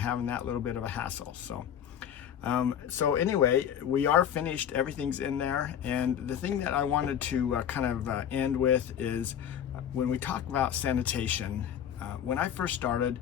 that little bit of a hassle. So anyway, we are finished. Everything's in there. And the thing that I wanted to end with is when we talk about sanitation. When I first started,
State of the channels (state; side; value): quieter; right; 9.3 dB